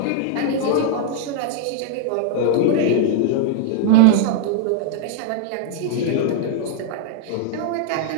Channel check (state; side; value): different; both; correlation -0.01